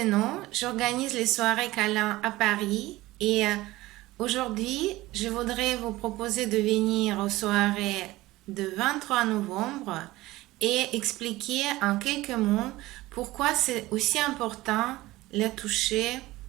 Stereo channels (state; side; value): quieter; left; 18.3 dB